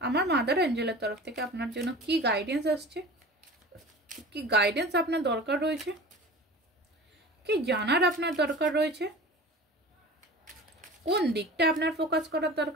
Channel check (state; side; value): normal; both; correlation 0.38